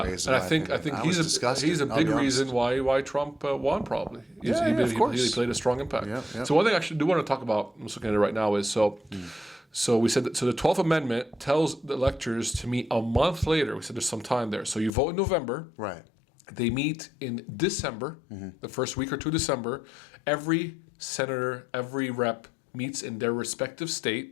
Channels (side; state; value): right; drops out; at 14.9 s